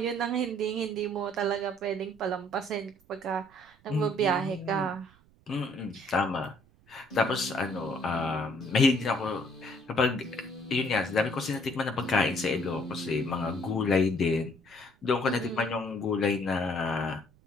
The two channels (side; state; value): right; noise; rumble, 30 dB below the sound